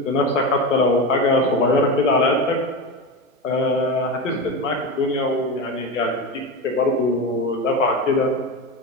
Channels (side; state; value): both; normal; correlation 0.21